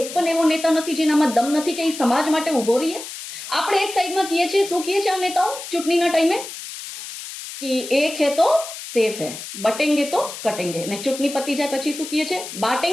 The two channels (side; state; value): left; noise; hiss, 10 dB below the sound